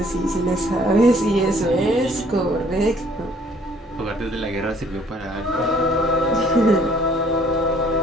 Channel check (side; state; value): both; normal; correlation 0.59